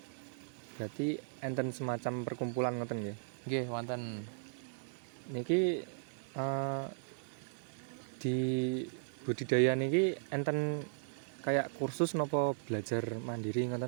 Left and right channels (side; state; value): left; silent; digital silence